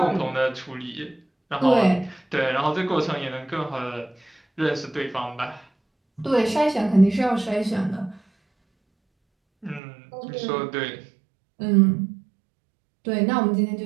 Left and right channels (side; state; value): left; drops out; at 9.8 s